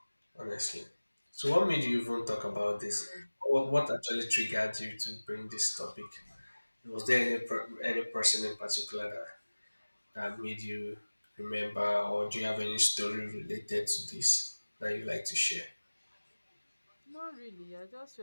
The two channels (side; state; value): both; inverted; correlation -1.00